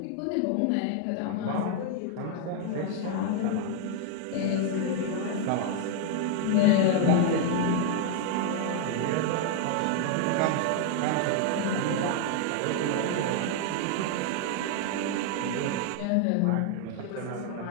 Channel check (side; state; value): both; different; correlation 0.00